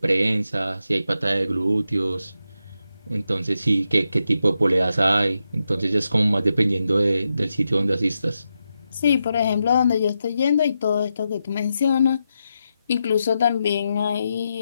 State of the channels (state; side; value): inverted; both; correlation -0.87